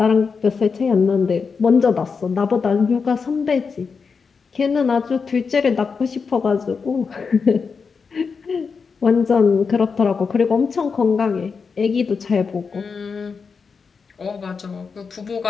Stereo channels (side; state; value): right; quieter; 5.4 dB